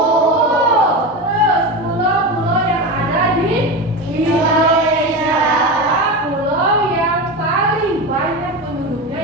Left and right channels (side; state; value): both; normal; correlation 0.22